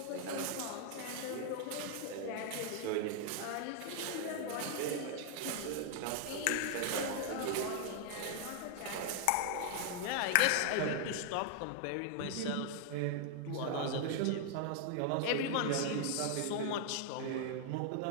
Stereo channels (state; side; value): different; both; correlation 0.00